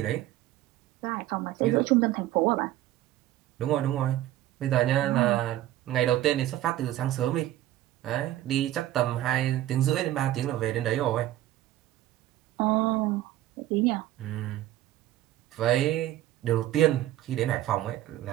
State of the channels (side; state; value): left; quieter; 14.1 dB